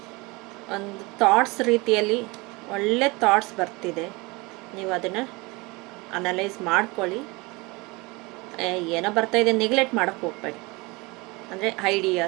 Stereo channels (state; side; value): quieter; left; 25.0 dB